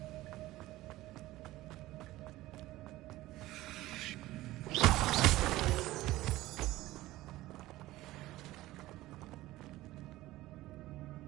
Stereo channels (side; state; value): left; quieter; 17.0 dB